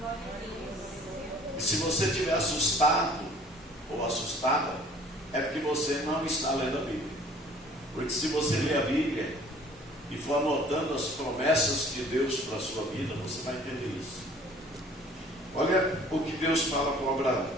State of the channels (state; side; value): normal; both; correlation 0.52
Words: E se você estiver assustado ou assustada, é porque você não está lendo a Bíblia. Porque se você ler a Bíblia e for anotando as promessas de Deus para a sua vida, você vai entender isso. Olha o que Deus fala com Abraão.